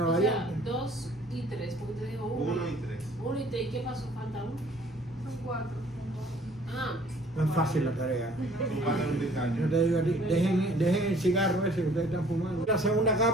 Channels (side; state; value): both; normal; correlation 0.55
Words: O sea, variante. 2 y 3, porque te digo 1. 1 y 3. 1 y 3, ¿y qué pasó? Falta 1. Son 4. Ah, No es fácil la tarea. Tu padre es un británico. Yo te digo a ti, dejen el cigarro ese que ustedes están fumando. La segunda